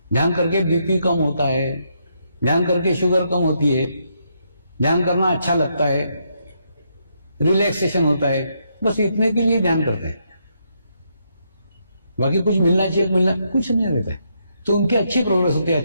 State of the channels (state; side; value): inverted; both; correlation -0.77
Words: ध्यान करके बीपी कम होता है, ध्यान करके शुगर कम होती है, ध्यान करना अच्छा लगता है, रिलैक्सेशन होता है। बस इतने के लिए ध्यान करते हैं, बाकी कुछ मिलना चाहिए, मिलना कुछ नहीं रहता है। तो उनकी अच्छी प्रोग्रेस होती है,